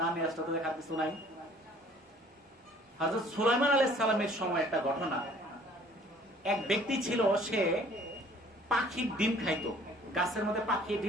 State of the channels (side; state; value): both; normal; correlation 0.55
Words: না নিয়ে আসলে তো দেখার কিছু নাই। হযরত সুলাইমান আলাইহিস সালামের সময় একটা ঘটনা। এক ব্যক্তি ছিল, সে পাখির ডিম খাইতো, গাছের মধ্যে পাখি